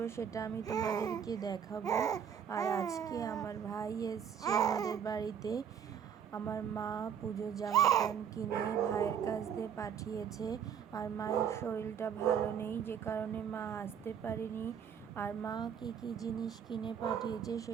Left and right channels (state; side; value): quieter; left; 8.1 dB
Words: সেটা আমি তোমাদেরকে দেখাবো। আর আজকে আমার ভাই এসছে আমাদের বাড়িতে। আমার মা পুজোর জামা প্যান্ট কিনে ভাইয়ের কাছ দিয়ে পাঠিয়েছে। আর মায়ের শরীরটা ভালো নেই, যে কারণে মা আসতে পারেনি। আর মা কি কি জিনিস কিনে পাঠিয়েছে